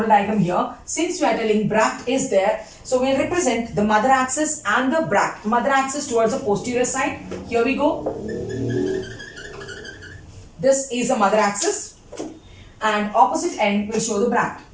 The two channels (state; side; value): identical; both; correlation 1.00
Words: diagram here. Since we are telling bract is there, so we'll represent the mother axis and the bract. Mother axis towards the posterior side. Here we go. This is the mother axis and opposite end will show the bract.